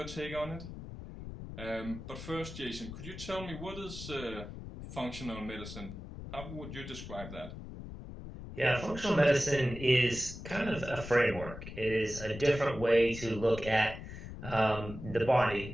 take on it. But first, Jason, could you tell me what is functional medicine? How would you describe that? Yeah, functional medicine is kind of a framework. It is a different way to look at the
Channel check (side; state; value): left; noise; rumble, 11 dB below the sound